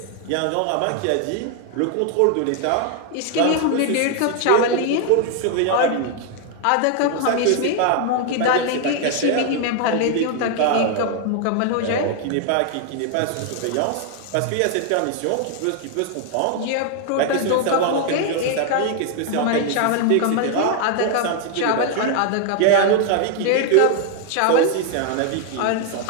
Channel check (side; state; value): both; different; correlation 0.00